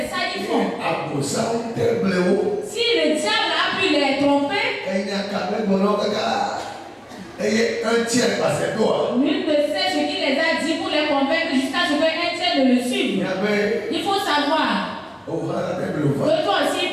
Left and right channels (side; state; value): both; identical; correlation 1.00